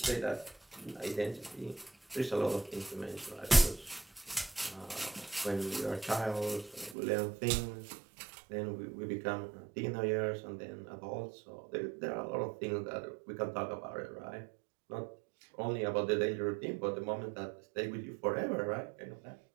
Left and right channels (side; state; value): left; drops out; at 7.0 s